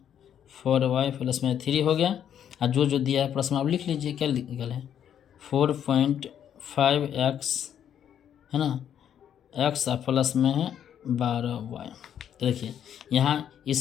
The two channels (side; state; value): right; quieter; 9.4 dB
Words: 4y प्लस में 3 हो गया। और जो दिया है प्रश्न आप लिख लीजिए क्या निकल है 4.5x है ना x प्लस में है 12y। तो देखिए यहाँ